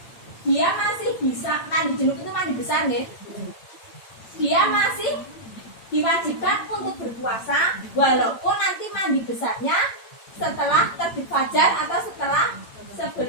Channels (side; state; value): right; late; 8.9 ms